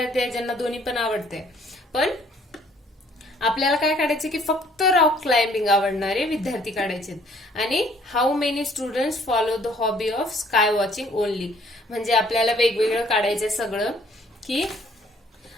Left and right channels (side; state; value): both; normal; correlation 0.60